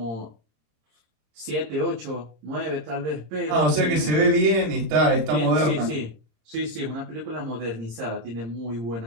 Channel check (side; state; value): left; late; 26 ms